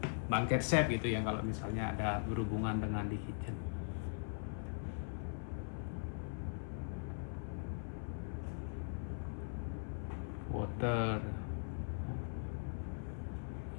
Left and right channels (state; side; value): silent; right; 51 dB below the other